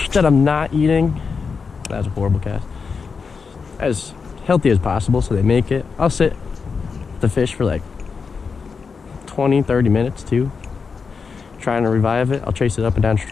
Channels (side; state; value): right; quieter; 5.3 dB